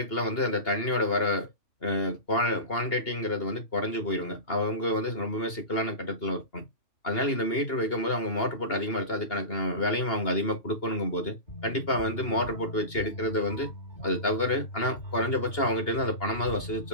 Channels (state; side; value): late; right; 2.8 ms